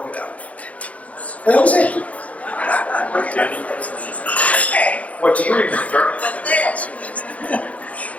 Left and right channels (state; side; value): late; right; 0.067 ms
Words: it out. And that was it. What do you remember?